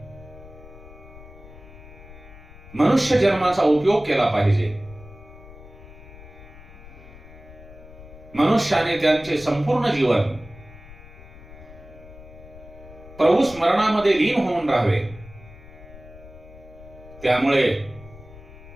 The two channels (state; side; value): noise; left; rumble, 18 dB below the sound